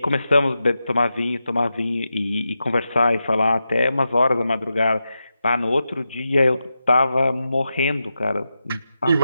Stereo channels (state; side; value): inverted; both; correlation -0.89